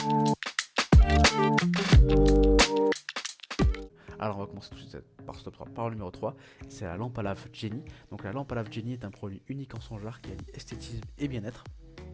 Alors on va commencer tout de suite par ce top 3, par le numéro 3, c'est la lampe à lave Jenny. Donc la lampe à lave Jenny est un produit unique en son genre qui allie esthétisme et bien-être.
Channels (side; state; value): both; identical; correlation 1.00